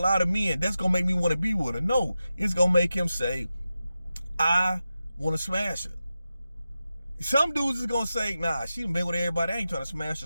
of men, that's gonna make me want to be with her. No, it's gonna make him say, I want to smash her. Some dudes is gonna say, nah, she done been with everybody, I ain't trying to smash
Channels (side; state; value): both; inverted; correlation -0.92